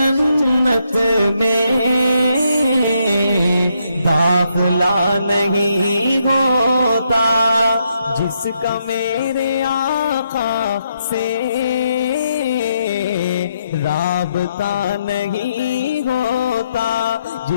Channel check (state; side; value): inverted; both; correlation -0.78